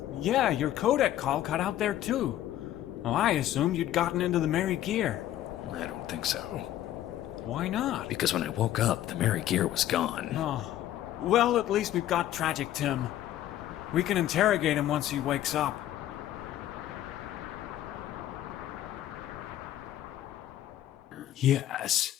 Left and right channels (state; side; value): quieter; right; 12.7 dB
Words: Yeah, your codec call cut out there too. Well, I assumed you'd gotten into the Merry Gear. I don't think so. Why not? Because when I woke up, the Merry Gear was gone. Oh, well, at least we've got Tragic Tim. We can interrogate him once he wakes up. Yes,